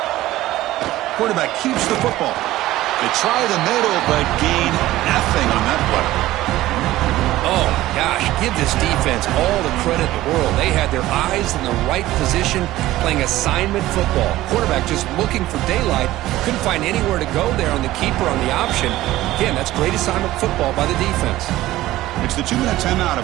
Quarterback keeps the football. They try the middle, but gain nothing on that play. Oh, my gosh. Give this defense all the credit in the world. They had their eyes in the right position, playing assignment football. Quarterback just looking for daylight. Couldn't find anywhere to go there on the keeper on the option. Again, that's great assignment football by the defense. It's the 2-minute timeout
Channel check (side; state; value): left; quieter; 16.0 dB